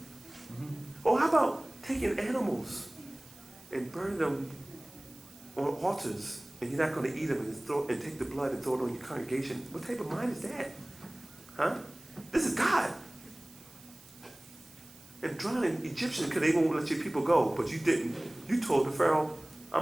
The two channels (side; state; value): right; noise; hiss, 22 dB below the sound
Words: Or how about taking animals and burning them on altars, and you're not going to eat them and take the blood and throw it on your congregation? What type of mind is that? Huh? This is God. And drowning Egyptians because they won't let your people go, but you didn't. You told the Pharaoh, I'm